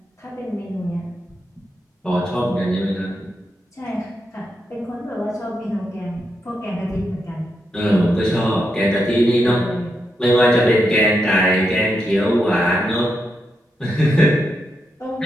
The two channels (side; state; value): both; normal; correlation 0.84